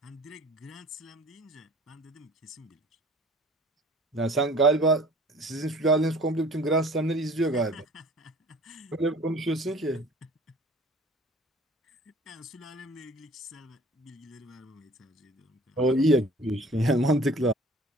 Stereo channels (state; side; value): normal; both; correlation 0.49